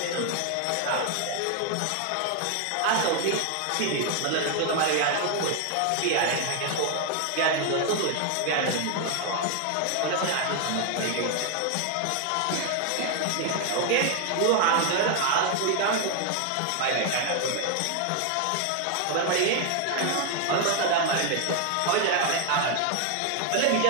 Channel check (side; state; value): both; different; correlation 0.00